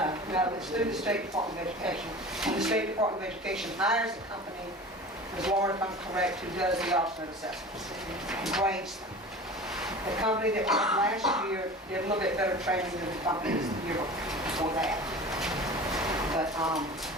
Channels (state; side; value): normal; both; correlation 0.37